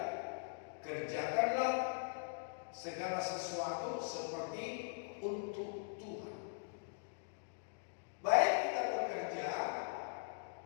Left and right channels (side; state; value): right; silent; digital silence